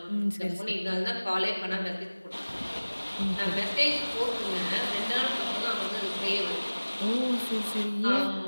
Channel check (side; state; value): both; inverted; correlation -1.00